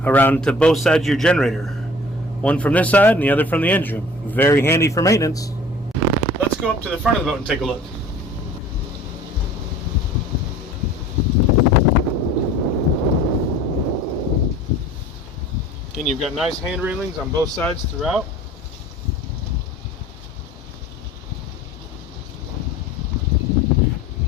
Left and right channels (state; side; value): normal; both; correlation 0.47